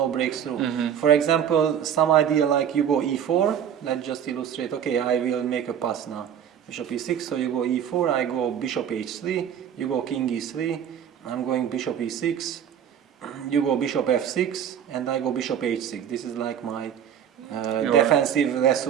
breakthrough. For example, some idea like you go e4, let's just illustrate, okay, I will make a pass now. Bishop e6, so you go e4, I go bishop h3, you go king e3, I'm going bishop e6, you go bishop f6, and I go bishop h6. This is like my defensive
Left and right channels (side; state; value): left; quieter; 9.0 dB